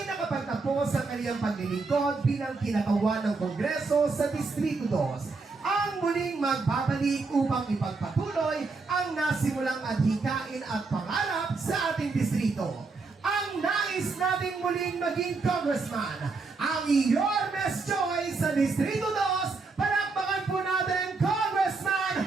nakapagtapos sa kanyang paglilingkod bilang kinakawan ng Kongreso sa Distrito 2. Ang muling magbabalik upang ipagpatuloy ang nasimulang adhikain at pangarap sa ating distrito. Ang nais nating muling maging congressman, ang Yormes Joy sa Distrito 2. Palakpakan po natin, Congressman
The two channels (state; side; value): quieter; left; 4.1 dB